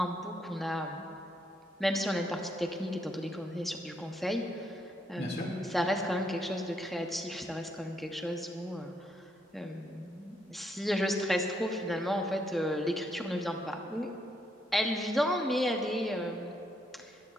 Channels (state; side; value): normal; both; correlation 0.75